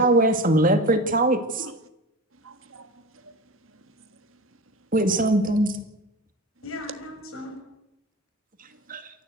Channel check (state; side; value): normal; both; correlation 0.29